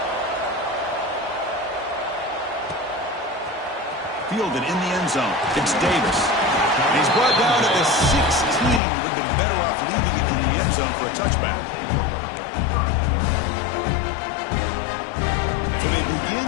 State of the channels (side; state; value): right; drops out; at 8.8 s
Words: Fielded in the end zone. It's Davis. And he's brought down at the 16. Would have been better off leaving it in the end zone for a touchback. So they begin